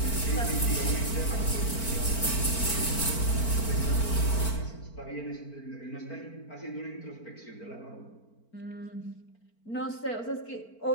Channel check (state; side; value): late; right; 4.4 ms